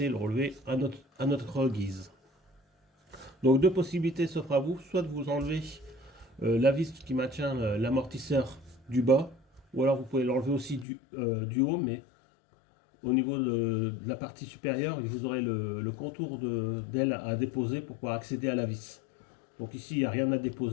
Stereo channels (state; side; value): drops out; right; at 10.9 s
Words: et le relever à notre guise. Donc deux possibilités s'offrent à vous, soit de vous enlever la vis qui maintient l'amortisseur du bas, ou alors vous pouvez l'enlever aussi du haut, mais au niveau de la partie supérieure, vous aurez le contour d'aile à déposer pour pouvoir accéder à la vis. Donc ici, il n'y a rien à